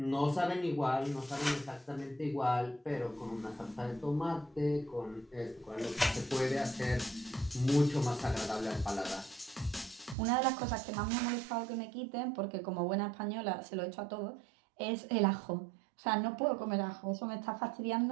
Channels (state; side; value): drops out; left; at 10.2 s